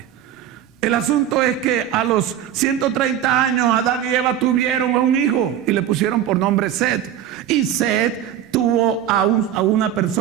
El asunto es que a los 130 años Adán y Eva tuvieron un hijo y le pusieron por nombre Set. Y Set tuvo a una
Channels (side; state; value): left; quieter; 10.6 dB